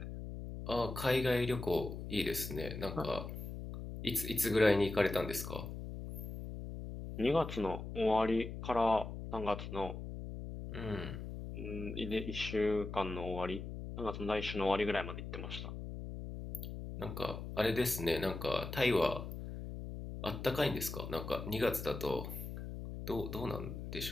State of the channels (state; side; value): noise; left; hum, 7 dB below the sound